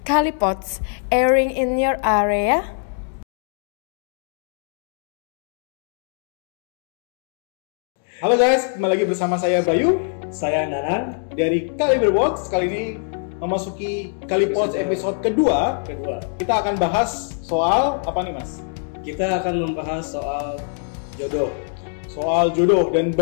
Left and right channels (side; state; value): right; silent; digital silence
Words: Kalipods, airing in your area. Halo guys, kembali lagi bersama saya Bayu, saya Nanan dari Kaliberbox. Kali ini memasuki Kalipods episode kedua. Kita akan bahas soal apa nih Mas? Kita akan membahas soal jodoh. Soal jodoh dan